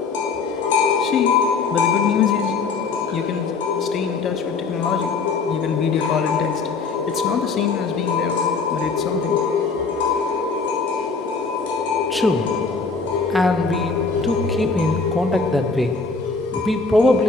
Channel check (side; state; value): right; quieter; 4.5 dB